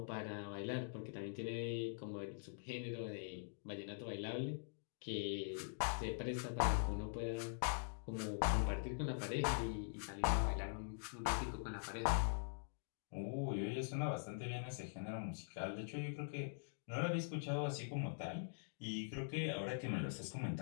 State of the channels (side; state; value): right; silent; digital silence